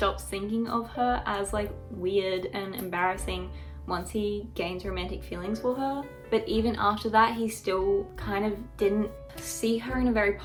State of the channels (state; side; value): identical; both; correlation 1.00